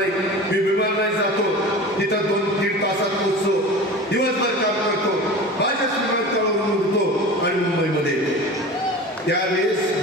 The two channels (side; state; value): both; normal; correlation 0.34